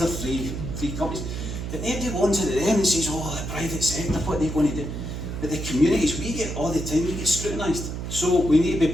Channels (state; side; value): noise; right; hum, 6 dB below the sound